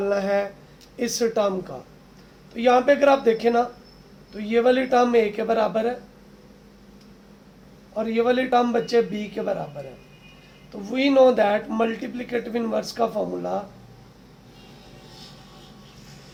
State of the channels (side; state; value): both; identical; correlation 1.00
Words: है इस टर्म का। तो यहाँ पे अगर आप देखें ना तो ये वाली टर्म a के बराबर है और ये वाली टर्म बच्चे b के बराबर है। तो we know that multiplicative inverse का फॉर्मूला